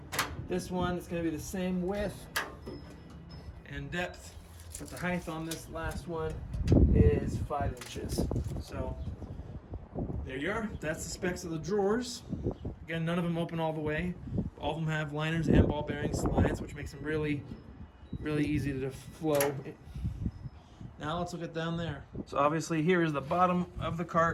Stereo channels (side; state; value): both; identical; correlation 1.00